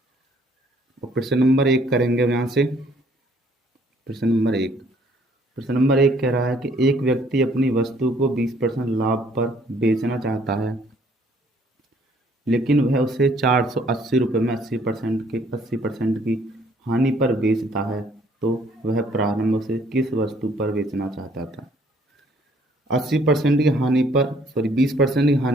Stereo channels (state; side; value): normal; both; correlation 0.62